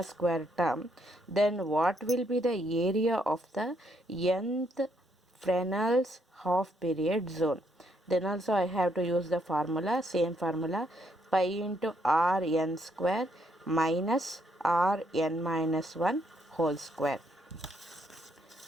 square term, then what will be the area of the nth Fresnel's half period zone? Then also I have to use the formula, same formula, pi into rn square minus rn minus 1 whole square.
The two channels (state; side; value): normal; both; correlation 0.73